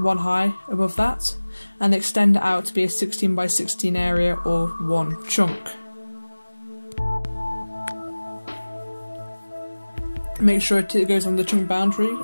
high above that, and extend it out to be a 16 by 16 area or one chunk. Make sure it goes on the chunk boundary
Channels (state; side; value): inverted; both; correlation -1.00